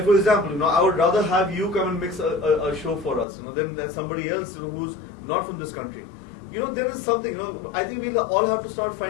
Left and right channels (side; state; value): right; drops out; at 3.2 s